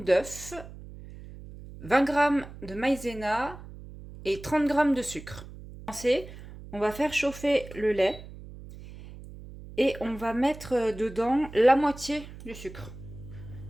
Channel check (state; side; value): noise; right; hum, 15 dB below the sound